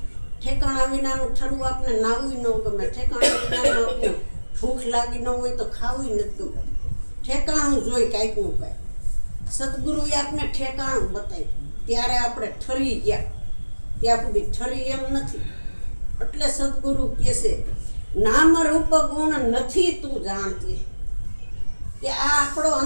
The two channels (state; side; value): inverted; both; correlation -1.00